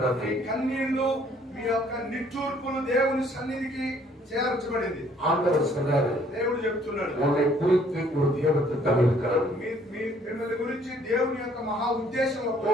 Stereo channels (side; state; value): both; normal; correlation 0.61